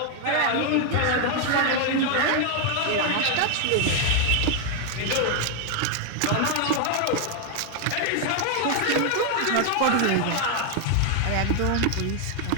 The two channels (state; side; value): different; both; correlation 0.00